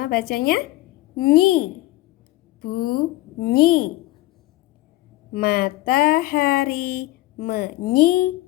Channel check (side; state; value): right; quieter; 17.8 dB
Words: bacanya nyi. Bunyi. Matahari